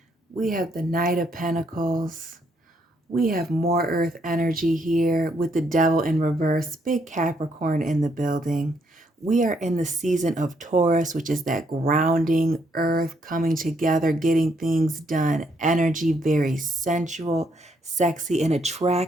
We have the Knight of Pentacles. We have more earth energy here with the devil in reverse, big Capricorn in the building. We are in the season of Taurus, which is that grounding earth coming together, getting things done. Energy, very sensual, sexy, and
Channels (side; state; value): both; normal; correlation 0.73